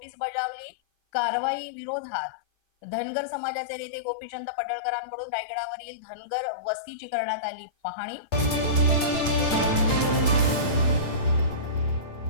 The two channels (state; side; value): late; right; 8.8 ms